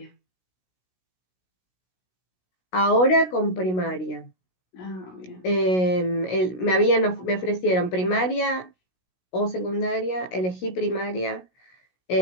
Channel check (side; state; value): right; late; 16 ms